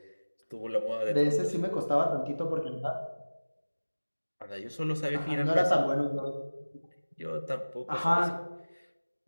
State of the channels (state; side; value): inverted; both; correlation -1.00